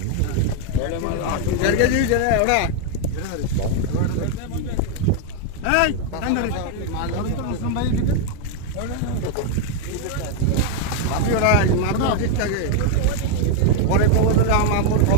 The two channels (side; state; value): both; different; correlation 0.01